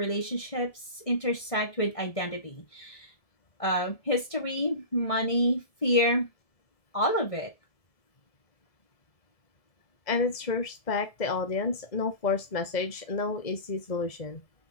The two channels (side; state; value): right; late; 1.7 ms